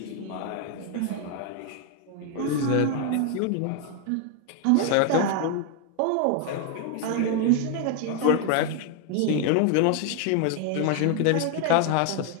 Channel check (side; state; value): both; different; correlation 0.01